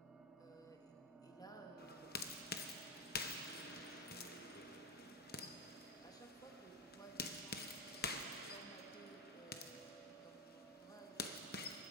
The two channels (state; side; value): normal; both; correlation 0.11